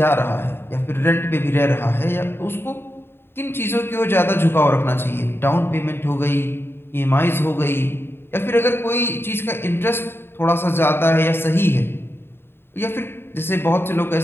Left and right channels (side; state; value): right; late; 0.11 ms